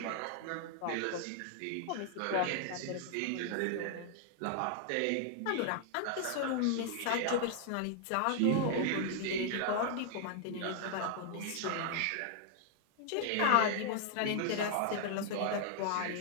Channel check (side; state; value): both; different; correlation 0.00